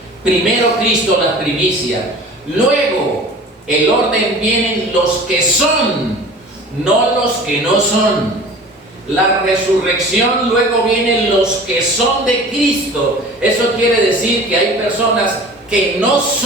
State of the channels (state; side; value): normal; both; correlation 0.41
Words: Primero Cristo, las primicias. Luego, el orden vienen los que son, no los que no son. La resurrección, luego vienen los que son de Cristo. Eso quiere decir que hay personas que no